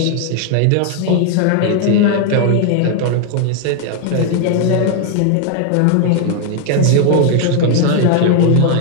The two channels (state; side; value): different; both; correlation 0.00